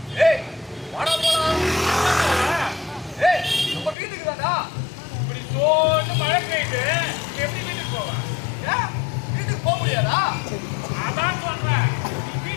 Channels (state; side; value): drops out; right; at 4.0 s